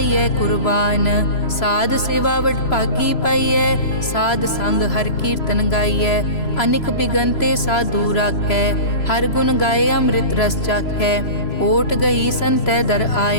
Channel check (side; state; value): right; late; 3.0 ms